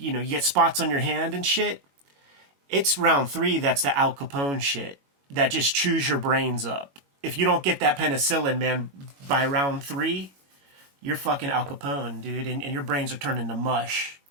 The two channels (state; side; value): late; left; 21 ms